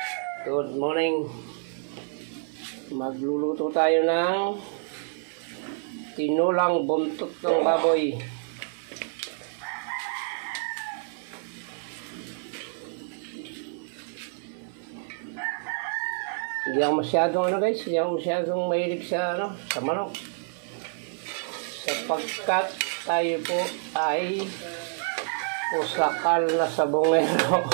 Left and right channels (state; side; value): silent; left; 56 dB below the other